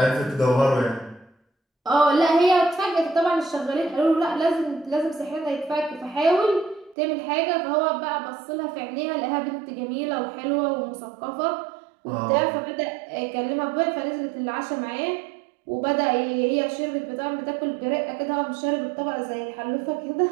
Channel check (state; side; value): drops out; left; at 7.0 s